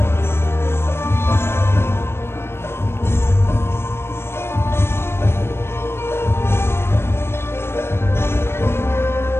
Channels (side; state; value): right; late; 0.12 ms